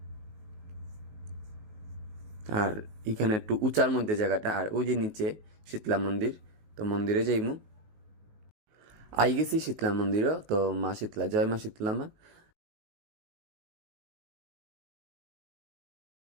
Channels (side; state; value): left; late; 19 ms